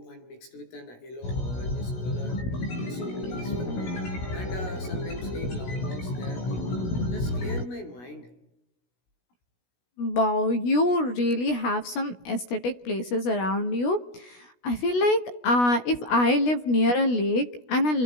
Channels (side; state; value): right; late; 16 ms